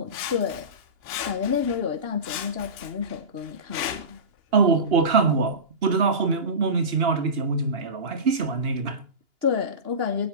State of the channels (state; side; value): late; left; 2.9 ms